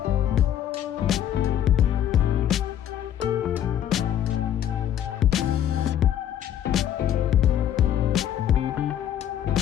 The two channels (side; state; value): right; quieter; 10.5 dB